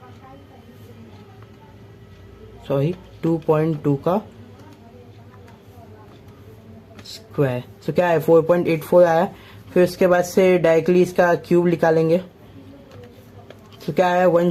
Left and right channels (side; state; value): both; identical; correlation 1.00